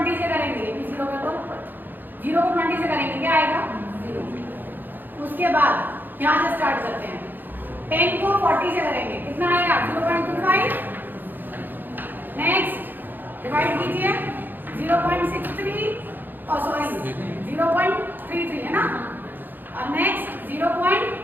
से करेंगे ये भी 0 कर दो, 0 को 20 से करेंगे क्या आएगा 0। उसके बाद यहाँ से स्टार्ट करते हैं, 10 को 40 से करेंगे कितना आएगा 0.25। नेक्स्ट डिवाइड कीजिए 0.63 और सॉरी 0.33 है ना, और नेक्स्ट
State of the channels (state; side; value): late; left; 0.090 ms